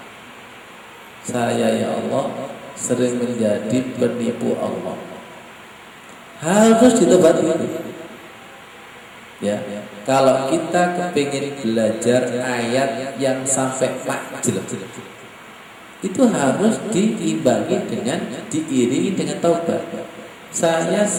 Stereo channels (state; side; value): identical; both; correlation 1.00